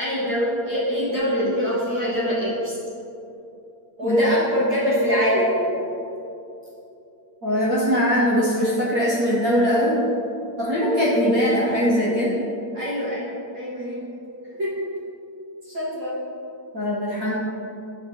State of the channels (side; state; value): left; late; 8.6 ms